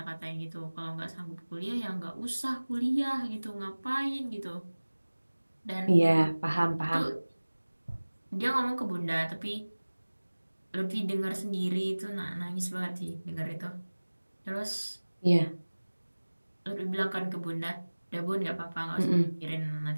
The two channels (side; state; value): both; inverted; correlation -1.00